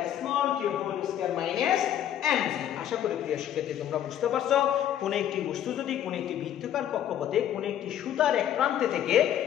small t whole square minus mg। আশা করি প্রিয় শিক্ষার্থী তোমরা বুঝতে পারছো, কোন একটি বস্তু যদি কোন একটি বৃত্তাকার কক্ষপথে কোন একটি সুতার এক প্রান্তে থেকে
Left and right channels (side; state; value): right; quieter; 10.7 dB